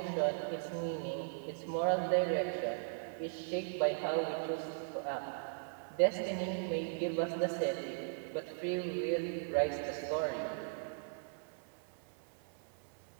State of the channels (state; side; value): silent; left; 52 dB below the other